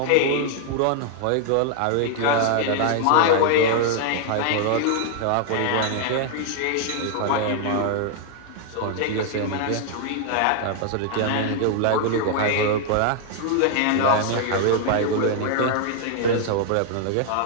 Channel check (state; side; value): different; both; correlation 0.00